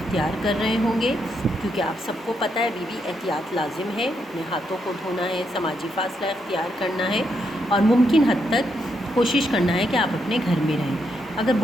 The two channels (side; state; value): both; normal; correlation 0.79